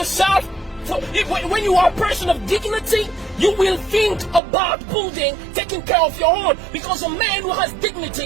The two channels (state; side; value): drops out; left; at 4.4 s